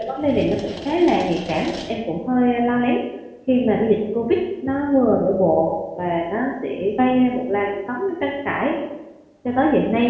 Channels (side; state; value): both; identical; correlation 1.00